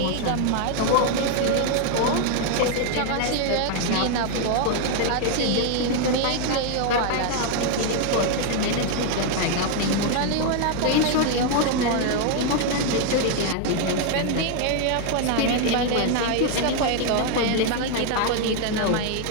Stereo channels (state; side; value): different; both; correlation 0.00